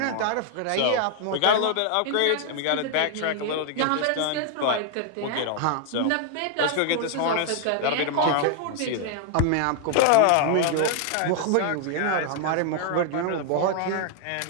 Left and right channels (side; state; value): both; different; correlation 0.00